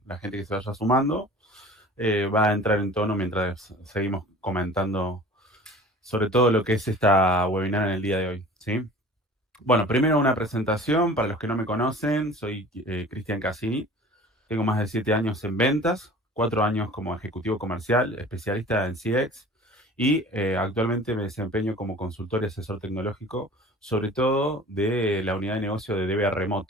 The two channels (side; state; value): both; normal; correlation 0.43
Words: la gente que se vaya sumando va a entrar en tono mientras seguimos comentando sobre todo lo que es esta webinar en el día de hoy, ¿sí? Bueno, primero una presentación para los que no me conocen. Soy Cristian Cassini. Tengo más de 7 años en ventas, 4 años como ejecutivo comercial, especialista en CX y actualmente me desempeño como consultor y asesor tecnológico, sobre todo de la unidad de negocio de DBA